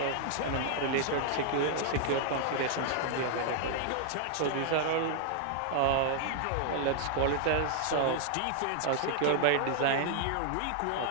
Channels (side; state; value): both; different; correlation -0.01